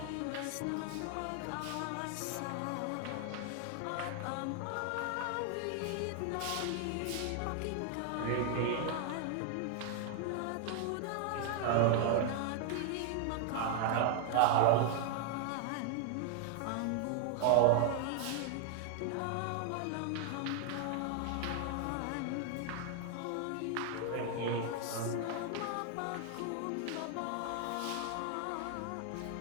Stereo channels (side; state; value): both; different; correlation 0.00